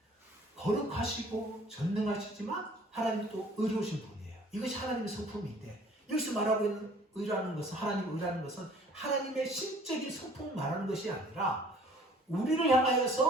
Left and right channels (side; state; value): both; normal; correlation 0.53